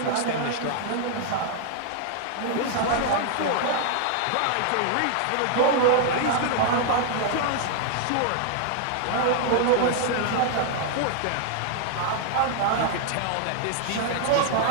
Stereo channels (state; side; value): different; both; correlation 0.00